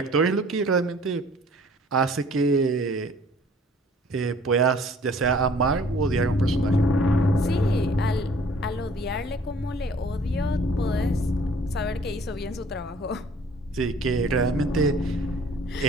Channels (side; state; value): both; normal; correlation 0.54